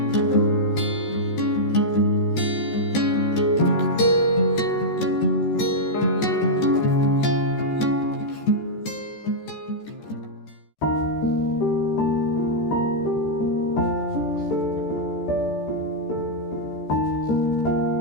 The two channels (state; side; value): late; right; 14 ms